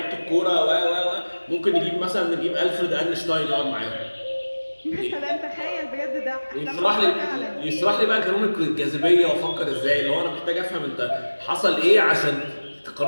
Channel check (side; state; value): both; inverted; correlation -1.00